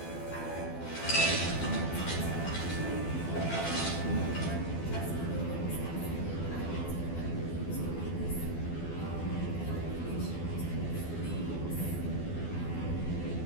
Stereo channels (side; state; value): right; late; 12 ms